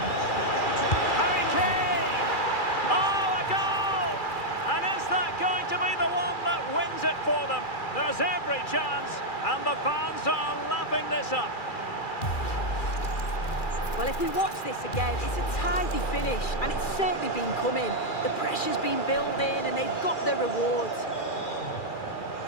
Harry Kane! it for them. There's every chance, and the fans are lapping this up. Well, if we watch this again, it's a tidy finish, and it's certainly been coming. The pressure's been building, and they've got their rewards.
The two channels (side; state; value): right; late; 2.4 ms